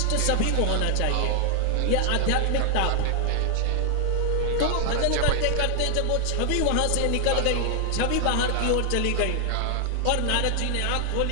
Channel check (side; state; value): both; different; correlation 0.00